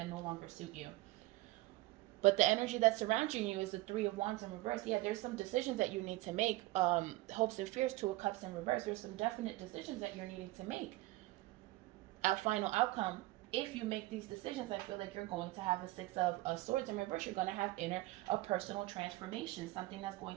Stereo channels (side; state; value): left; quieter; 19.3 dB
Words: no longer suit you. But the energy that's surrounding you is the 3 of Wands in reverse. Yeah, there's some decisions that you need to make. Hopes and fears, 2 of Cups in reverse. There's some definite decisions that you're needing to make. A final outcome, if you make these decisions, I feel like you're going to have a 6 of Swords in reverse. You're going to have a personal transformation, something that's